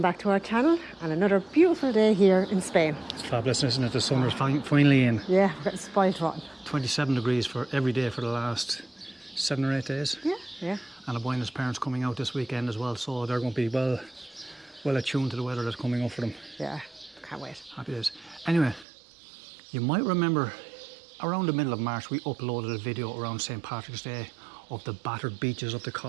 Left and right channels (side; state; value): left; drops out; at 18.9 s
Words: back to our channel and another beautiful day here in Spain. It's fabulous, isn't it? The sun is finally in. Yeah, we're getting spoiled rotten. 27 degrees for every day for the last 7 or 8 days. Yeah. And I'm buying his parents coming out this weekend as well, so they're going to be well attuned to the weather that's coming up for them. Yeah, can't wait. Happy days. Anyway, you might remember around the middle of March we uploaded a video around St. Patrick's Day of the battered beaches of the